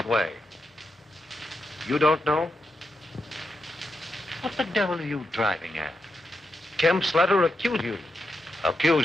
way? You don't know? What the devil are you driving at? Kemp's letter accused you.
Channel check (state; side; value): normal; both; correlation 0.85